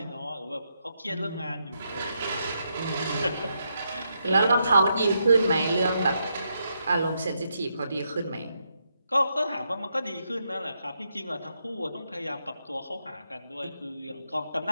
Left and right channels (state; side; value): inverted; both; correlation -0.80